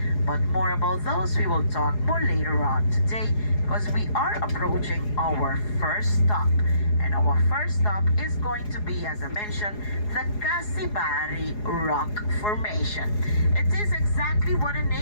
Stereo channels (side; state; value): right; late; 4.8 ms